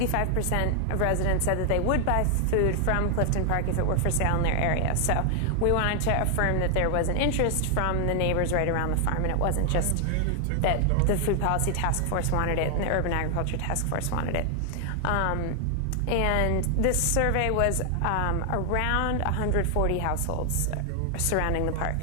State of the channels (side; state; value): both; different; correlation 0.00